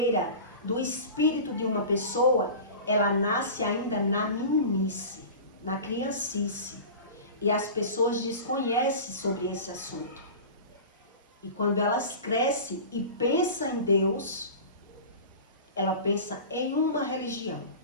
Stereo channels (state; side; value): inverted; both; correlation -0.35